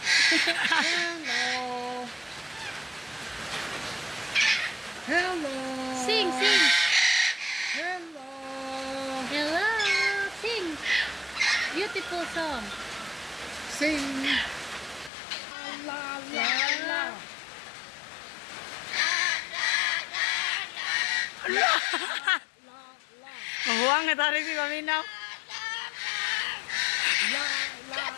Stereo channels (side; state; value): right; drops out; at 15.1 s